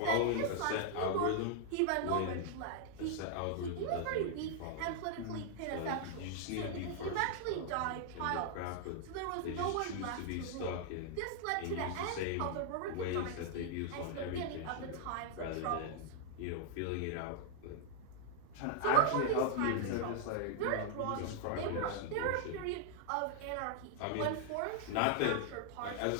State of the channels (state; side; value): different; both; correlation -0.01